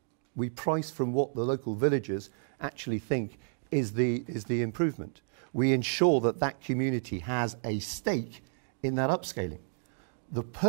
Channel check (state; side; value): silent; left; digital silence